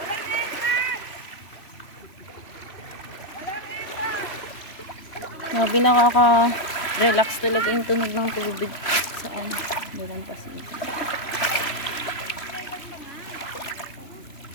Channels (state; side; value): late; right; 3.0 ms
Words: Grabe, nakaka-relax talaga yung tunog ng tubig saan. Dalang Pasig.